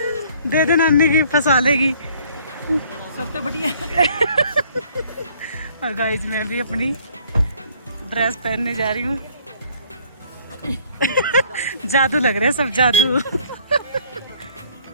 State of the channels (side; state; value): both; inverted; correlation -0.58